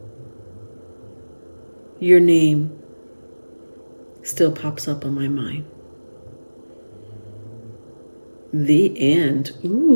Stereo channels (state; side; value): inverted; both; correlation -1.00